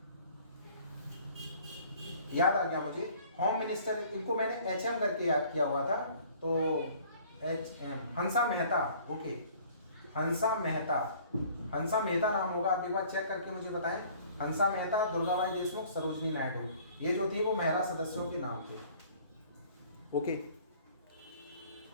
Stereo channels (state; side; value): inverted; both; correlation -0.53